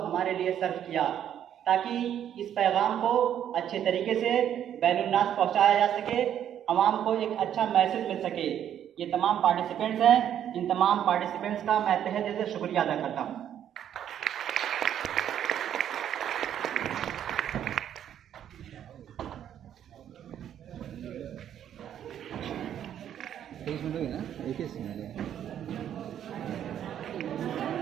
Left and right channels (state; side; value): quieter; left; 10.0 dB